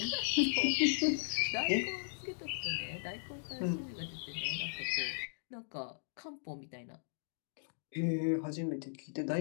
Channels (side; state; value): right; silent; digital silence